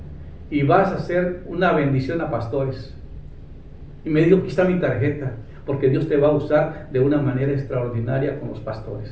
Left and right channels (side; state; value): both; identical; correlation 1.00